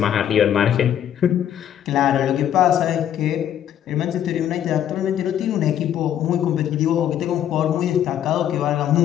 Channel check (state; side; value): quieter; right; 10.3 dB